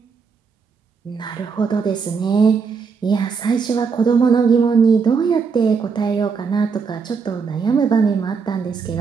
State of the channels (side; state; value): left; quieter; 5.5 dB